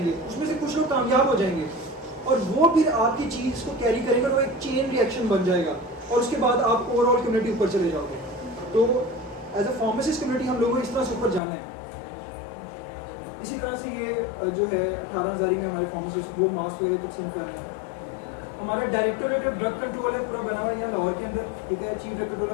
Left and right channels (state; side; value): drops out; right; at 11.4 s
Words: उसमें से कुछ लोग कामयाब हो जाएंगे और वो फिर आपकी चीज़ को कैरी करेंगे और वो एक चेन रिएक्शन बन जाएगा और उसके बाद आप ओवरऑल कम्युनिटी ऊपर चले जाओगे। तो एज अ फार्मासिस्ट कम्युनिटी हम लोगों को इस तरह से ऊपर जाना है। इसी तरह से ये जो है 18,000 में हमारे फार्मासिस्ट वो मास्क वगैरह तकसीम कर रहे हैं। हमारा डायरेक्टोरेट ऑफ ड्रग कंट्रोल है, पूरा बना हुआ है यहाँ लाहौर के अंदर, ठीक है। चीफ ड्रग